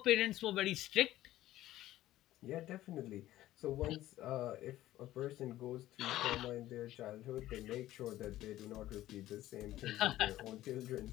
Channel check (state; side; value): quieter; right; 14.7 dB